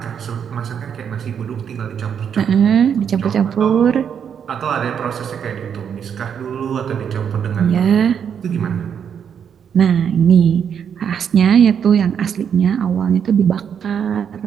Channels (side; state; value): left; quieter; 7.8 dB